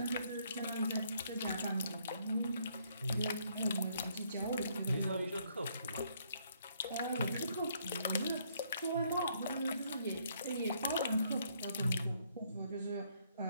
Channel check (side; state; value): both; inverted; correlation -0.69